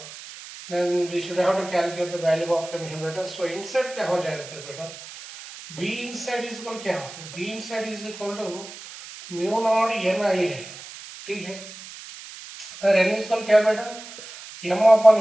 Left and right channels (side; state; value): right; noise; hiss, 15 dB below the sound